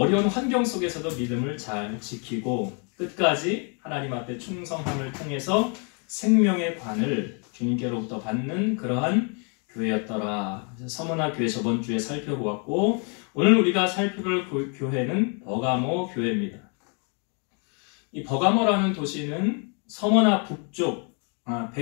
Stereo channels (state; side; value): quieter; right; 37.3 dB